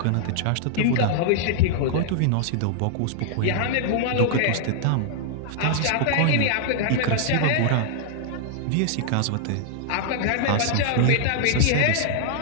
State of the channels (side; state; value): both; different; correlation -0.01